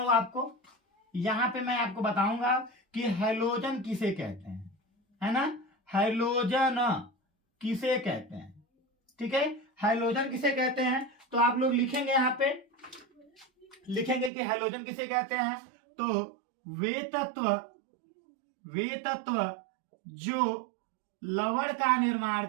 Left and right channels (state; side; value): drops out; left; at 14.3 s